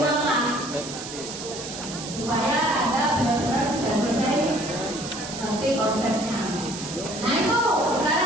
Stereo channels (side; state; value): right; noise; hiss, 9 dB below the sound